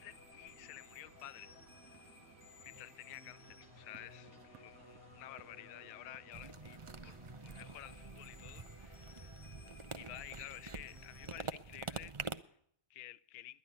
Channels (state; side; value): late; left; 1.4 ms